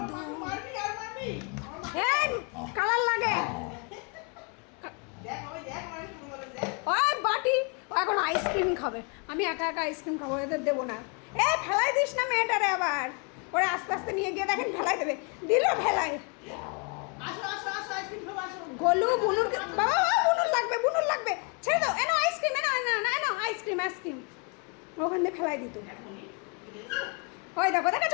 दूं? মারবি আর মারবি। এই কালার লাগে। দেখ ওই দেখ মার শুরু করে দেখ। ওই বাটি ও এখন আইসক্রিম খাবে। আমি একা একা আইসক্রিম খাবো, এদের দেবো না। এ ফেলাই দিস না মেয়েটারে আবার। ওরা আস্তে আস্তে নিয়ে গিয়ে দেখেন ফেলাই দেবে। দিল ফেলাই। আসো আসো আসো আইসক্রিম খাবো আসো। গোলু বুনুর বাবা বাবা বুনুর লাগবে ছেড়ে দাও। এনো আইসক্রিম এনো আইসক্রিম ওখান দিয়ে ফেলাই দিত। ওই দেখো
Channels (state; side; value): quieter; right; 34.5 dB